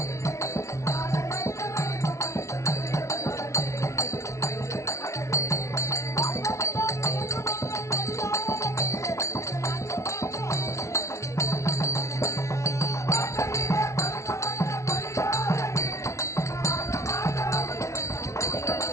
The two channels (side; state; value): right; late; 0.14 ms